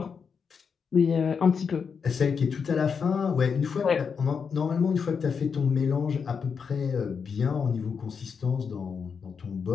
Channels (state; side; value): quieter; right; 6.1 dB